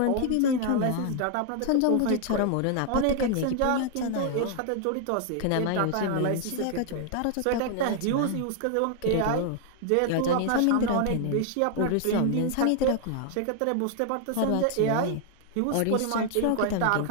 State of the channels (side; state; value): both; different; correlation 0.00